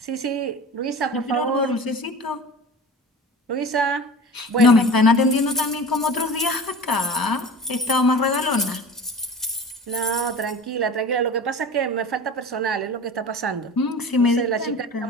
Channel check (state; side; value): normal; both; correlation 0.36